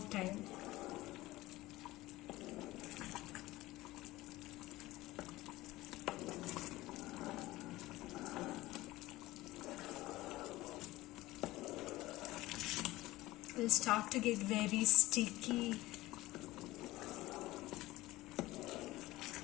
It will start to get very sticky.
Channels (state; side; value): quieter; right; 18.1 dB